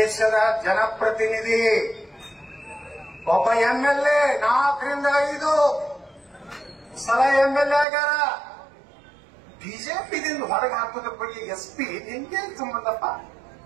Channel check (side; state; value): left; drops out; at 7.9 s